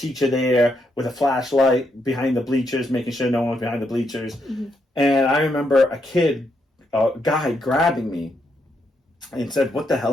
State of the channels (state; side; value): normal; both; correlation 0.79